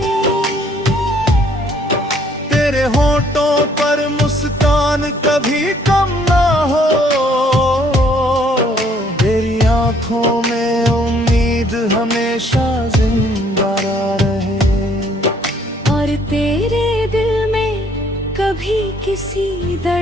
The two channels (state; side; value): normal; both; correlation 0.63